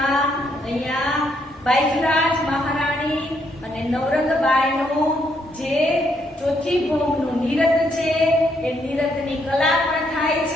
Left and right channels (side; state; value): both; normal; correlation 0.73